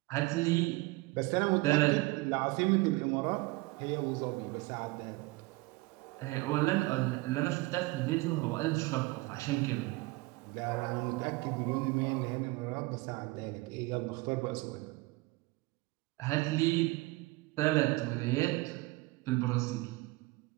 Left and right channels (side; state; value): left; quieter; 22.4 dB